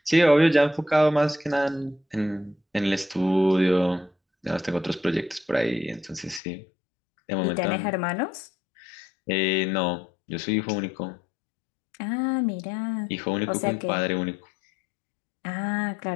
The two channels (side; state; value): right; drops out; at 6.4 s